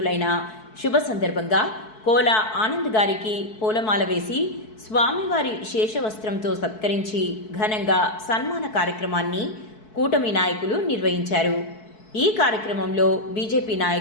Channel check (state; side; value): late; right; 4.6 ms